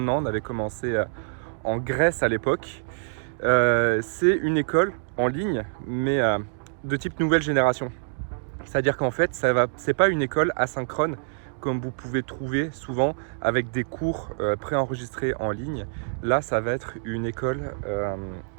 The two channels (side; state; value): left; silent; digital silence